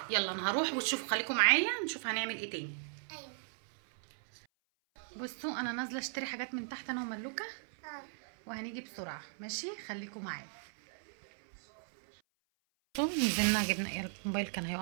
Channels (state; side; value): silent; left; 53 dB below the other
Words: يلا انا هروح وتشوفوا، خليكم معايا نشوف هنعمل ايه تاني. ايوه بصوا انا نازله اشتري حاجات من تحت انا وملوكه وهنيجي بسرعه ماشي، خليكم معايا. بصوا نزلنا جبنا ايه، الموبايل كان